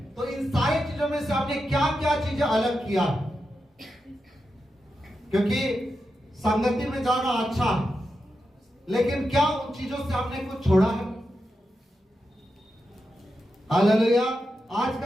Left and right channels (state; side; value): normal; both; correlation 0.88